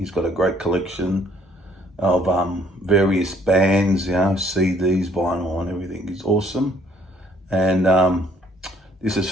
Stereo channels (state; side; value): normal; both; correlation 0.64